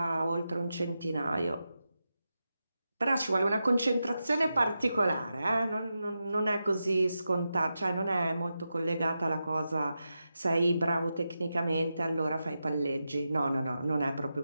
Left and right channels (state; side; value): inverted; both; correlation -0.90